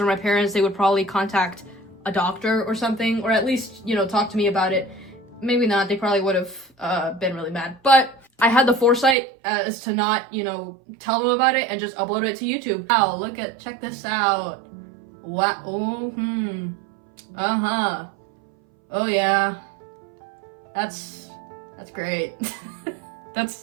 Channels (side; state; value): left; drops out; at 9.2 s